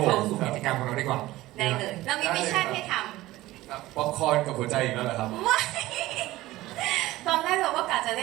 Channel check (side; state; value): left; quieter; 17.3 dB